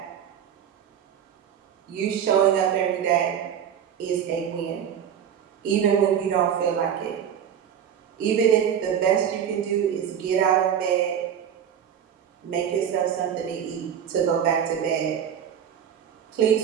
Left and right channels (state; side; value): quieter; left; 8.8 dB